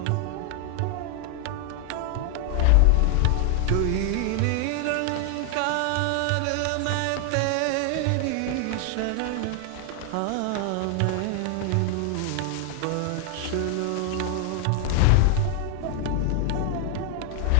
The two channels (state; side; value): different; both; correlation 0.00